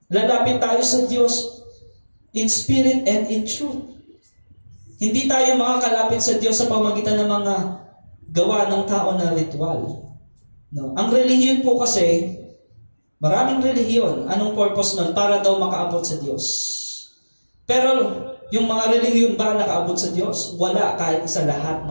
Lalapit tayo sa Diyos in spirit and in truth. Hindi tayo makakalapit sa Diyos sa pamagitan ng mga gawa ng tao na ritual. No? Ang relihiyon po kasi, maraming relihiyon. Anong purpose nun? Para daw makaabot sa Diyos. Pero yung mga relihiyon ba nakaabot sa Diyos? Wala, kahit sa lahat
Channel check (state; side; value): inverted; both; correlation -1.00